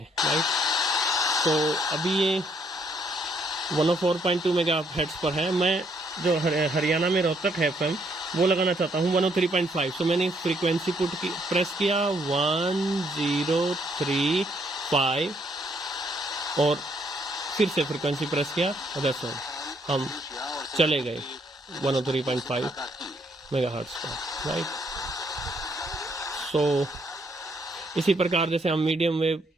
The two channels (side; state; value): both; normal; correlation 0.70